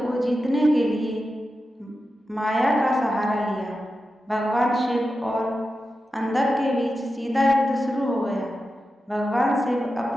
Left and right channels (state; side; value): normal; both; correlation 0.91